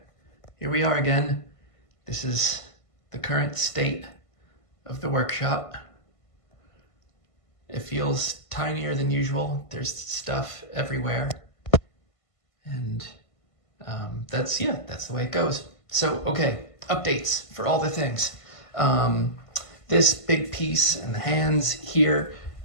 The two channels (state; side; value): late; right; 1.5 ms